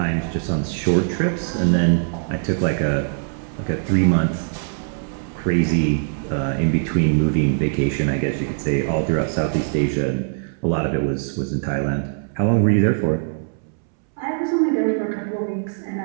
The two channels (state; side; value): silent; left; 65 dB below the other